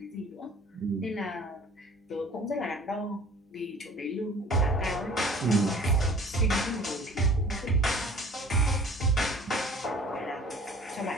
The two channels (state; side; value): normal; both; correlation 0.48